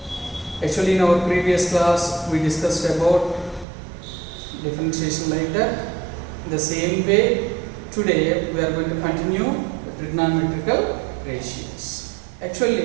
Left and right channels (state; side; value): drops out; left; at 3.7 s